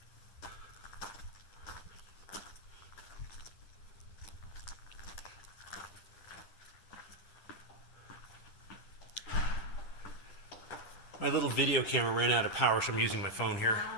My little video camera ran out of power, so I'm using my phone here.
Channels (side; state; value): right; late; 10 ms